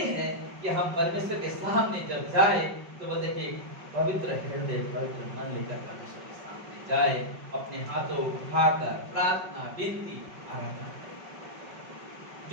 है कि हम परमेश्वर के सामने जब जाए तो वो देखिए पवित्र हृदय, पवित्र मन लेकर परमेश्वर के सामने जाए, अपने हाथों उठाकर प्रार्थना, विनती, आराधना करें।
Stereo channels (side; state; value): left; late; 5.4 ms